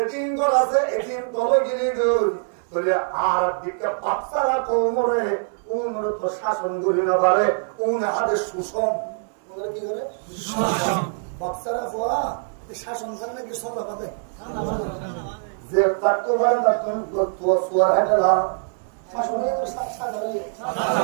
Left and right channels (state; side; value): silent; left; digital silence